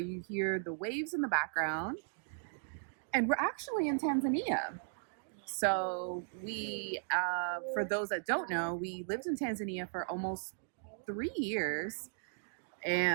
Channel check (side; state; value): left; silent; digital silence